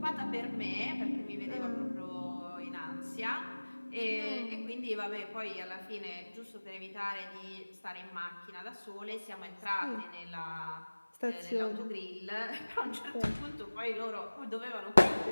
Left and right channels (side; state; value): both; inverted; correlation -1.00